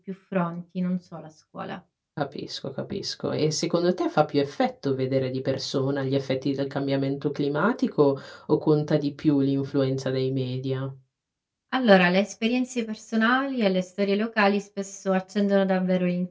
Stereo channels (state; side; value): identical; both; correlation 1.00